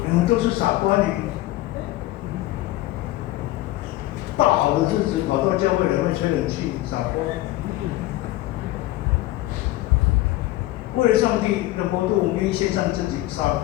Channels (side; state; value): right; quieter; 17.0 dB